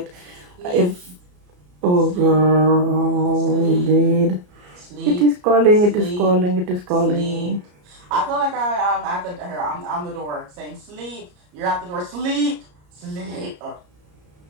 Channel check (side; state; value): left; late; 34 ms